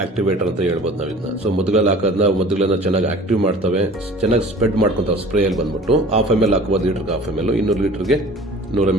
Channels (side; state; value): both; normal; correlation 0.44